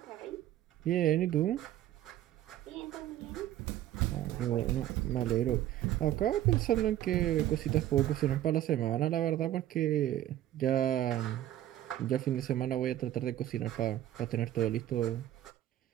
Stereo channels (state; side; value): quieter; left; 12.8 dB